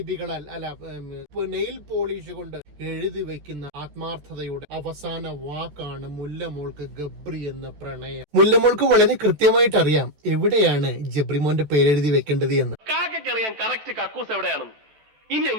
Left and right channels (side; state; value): left; late; 14 ms